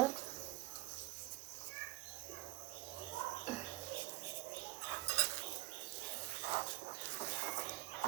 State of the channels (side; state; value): left; quieter; 18.9 dB